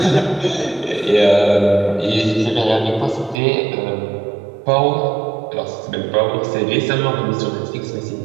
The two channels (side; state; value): left; drops out; at 3.4 s